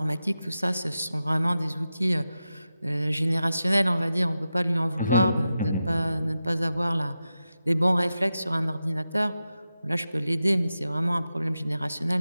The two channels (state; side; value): inverted; both; correlation -0.91